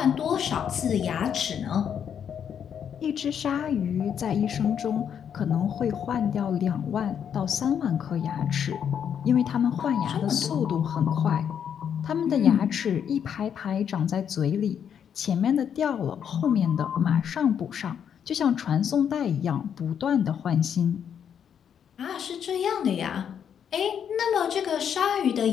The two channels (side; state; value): right; quieter; 8.3 dB